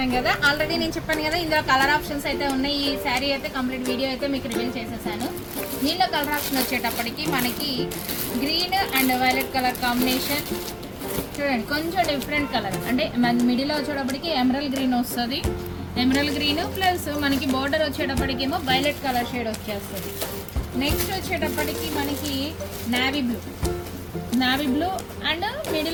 కదా. ఆల్రెడీ నేను చెప్పాను కదా, ఇందులో కలర్ ఆప్షన్స్ అయితే ఉన్నాయి. ఈ శారీ అయితే కంప్లీట్ వీడియో అయితే మీకు రివీల్ చేసేసాను. దీనిలో కలర్ ఆప్షన్ వచ్చేటప్పటికి మనకి green and violet colour combination చూడండి. కొంచెం డిఫరెంట్ కలర్ అంటే మిడిల్లో వచ్చేటప్పటికి ఎమరల్ గ్రీన్ వస్తుంది. ఎమరల్ గ్రీన్ ప్లస్ మనకి బోర్డర్ వచ్చేటప్పటికి ఏమో వైలెట్ కలర్ షేడ్ వచ్చేస్తుంది. నెక్స్ట్ వచ్చేటప్పటికి మనకి నావీ బ్లూ అండ్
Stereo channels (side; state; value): both; identical; correlation 1.00